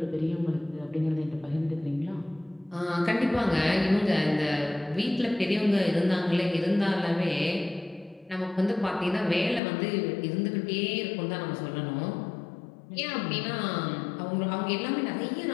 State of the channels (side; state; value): right; drops out; at 9.6 s